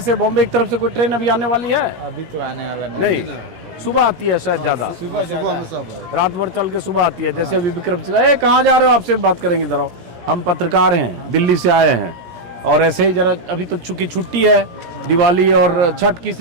से बॉम्बे की तरफ से कोई ट्रेन अभी आने वाली है? अभी तो आने वाला नहीं, सुबह आती है शायद ज्यादा, सुबह में सब रात भर चल के सुबह आती है। जैसे अभी विक्रमशिला, कहाँ जा रहे हो? आपसे बात करेंगे इधर आओ। हम पत्रकार हैं, दिल्ली से आए हैं और ऐसे ही जरा अभी तो चूंकि छुट्टी है दिवाली और छठ की,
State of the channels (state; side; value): late; left; 17 ms